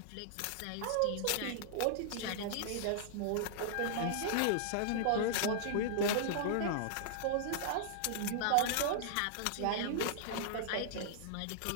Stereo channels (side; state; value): both; different; correlation -0.01